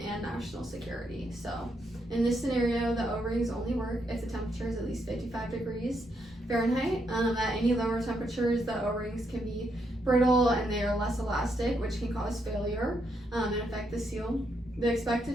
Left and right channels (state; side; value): normal; both; correlation 0.78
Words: and national security. So in this scenario, the O-rings only work if the temperature is at least 55 degrees Fahrenheit. At any lower temperatures, the O-rings can be brittle and they are less elastic, which can cause failure and affect the seal. The